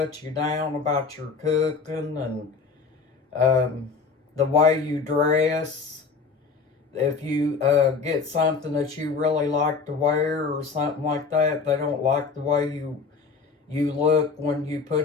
you down about your cooking, and the way you dress. If you get something that you really like to wear or something like that, they don't like the way you look when you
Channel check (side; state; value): right; quieter; 4.9 dB